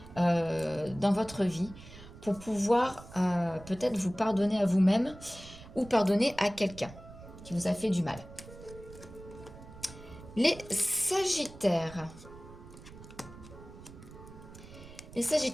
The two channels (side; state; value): right; noise; rumble, 17 dB below the sound